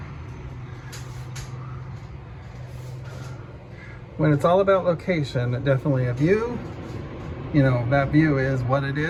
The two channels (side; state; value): both; identical; correlation 1.00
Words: When it's all about location, definitely a view. You know, that view is what it